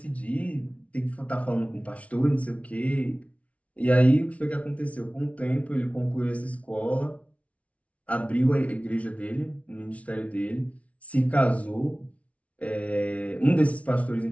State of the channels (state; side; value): late; right; 0.065 ms